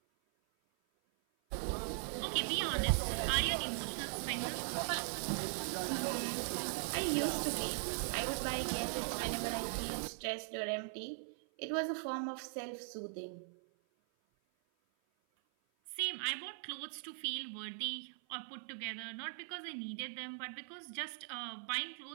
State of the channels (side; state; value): left; silent; 51 dB below the other